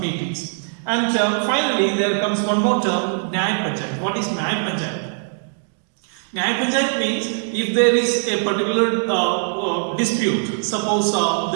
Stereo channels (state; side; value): silent; left; digital silence